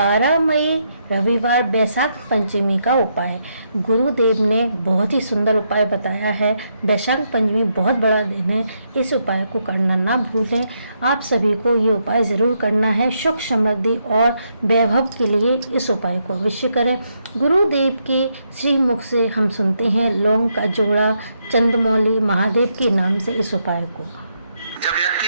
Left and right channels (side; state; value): both; inverted; correlation -0.79